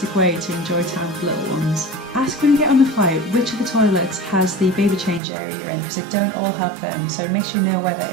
way to enjoy time with little ones. Ask when you get on the flight which of the toilets has the baby change area you're in, because they don't all have them, so make sure you know where that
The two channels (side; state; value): left; drops out; at 5.2 s